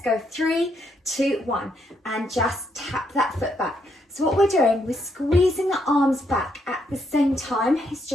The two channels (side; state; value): both; normal; correlation 0.75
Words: go 3, 2, 1, and just tap that foot back. So what we're doing, we're squeezing the arms back at the same time. It's